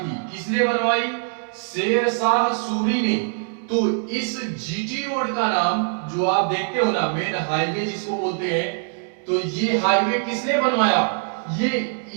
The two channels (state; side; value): silent; left; 58 dB below the other